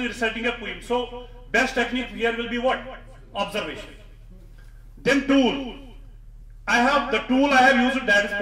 is reciting a poem. So best technique here will be what? Observation. Then tool. I have the tool I have used, that is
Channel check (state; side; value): identical; both; correlation 1.00